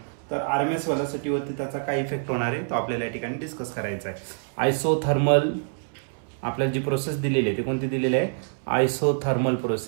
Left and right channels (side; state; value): left; silent; 61 dB below the other